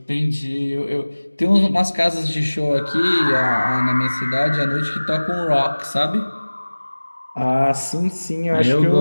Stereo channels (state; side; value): inverted; both; correlation -1.00